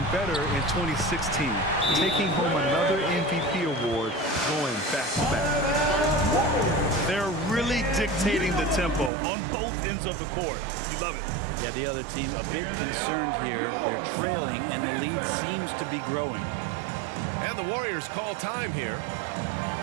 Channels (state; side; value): drops out; left; at 9.1 s